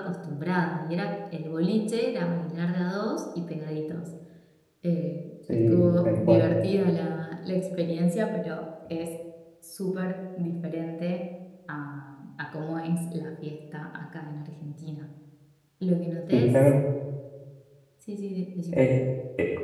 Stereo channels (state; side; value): identical; both; correlation 1.00